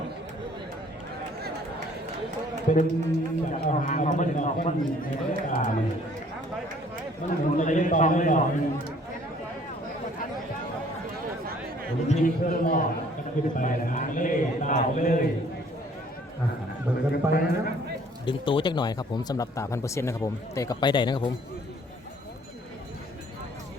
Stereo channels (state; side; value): normal; both; correlation 0.58